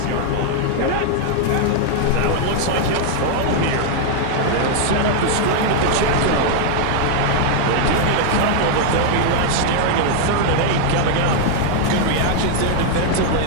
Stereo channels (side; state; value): both; different; correlation 0.00